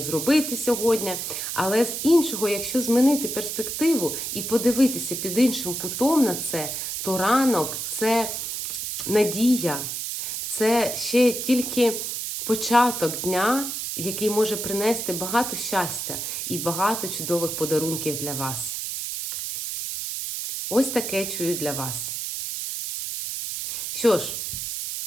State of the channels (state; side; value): noise; right; hiss, 4 dB below the sound